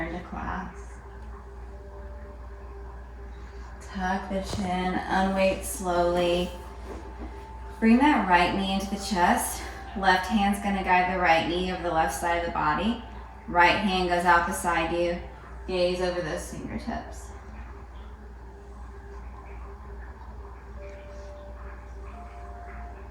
to class. Tuck the chin, unweight slowly. Bring that right knee into the chest. Left hand's gonna guide the right knee over the left side of the body. Right hand goes out beside you. Gaze over those fingertips.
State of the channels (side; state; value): both; identical; correlation 1.00